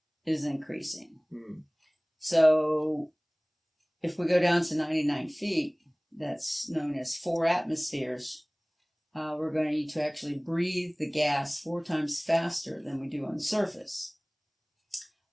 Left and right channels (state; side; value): identical; both; correlation 1.00